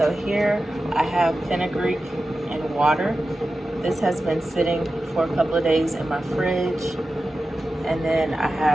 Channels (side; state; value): both; normal; correlation 0.93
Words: here I have fenugreek and water. This has been sitting for a couple of days in my fridge. And then I